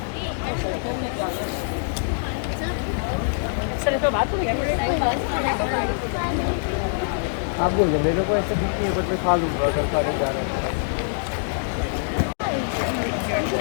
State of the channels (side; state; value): right; silent; digital silence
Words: आप बोल दो मेरे को ऐसे दिखनी है but मैं खा लूँगा अगर खाने जा रहा है